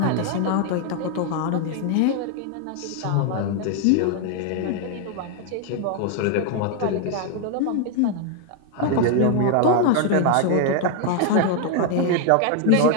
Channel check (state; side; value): different; both; correlation 0.00